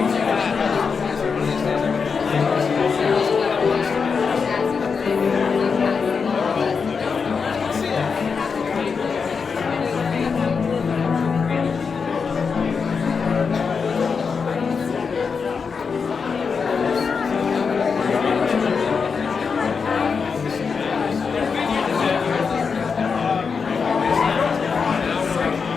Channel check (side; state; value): right; quieter; 5.5 dB